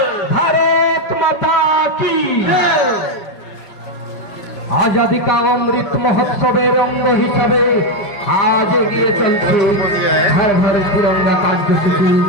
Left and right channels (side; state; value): right; late; 5.4 ms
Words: भारत माता की। आजादी का अमृत महोत्सवेर अंग हिसाবে আজ এগিয়ে চলছে হর হর তিরঙ্গা কার্যসূচি